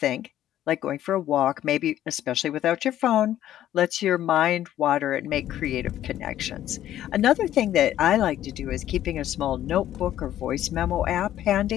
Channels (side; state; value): right; quieter; 12.3 dB